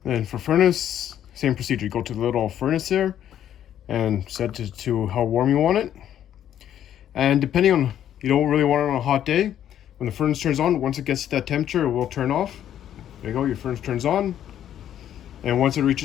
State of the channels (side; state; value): right; quieter; 10.6 dB